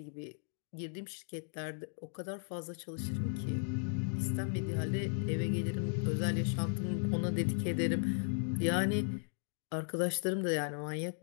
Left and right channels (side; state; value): right; silent; 54 dB below the other